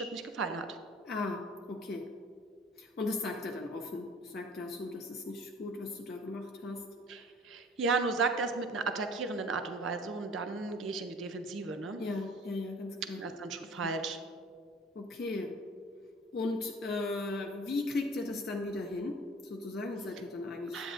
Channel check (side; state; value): both; normal; correlation 0.48